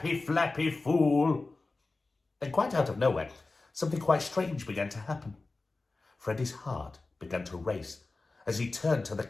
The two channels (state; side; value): quieter; right; 3.5 dB